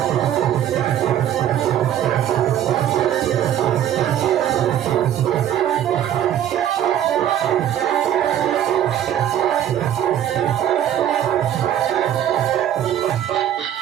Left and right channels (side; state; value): left; quieter; 10.8 dB